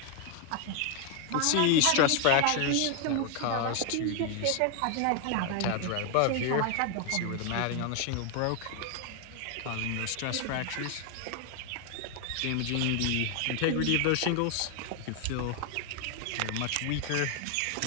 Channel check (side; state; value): both; different; correlation 0.01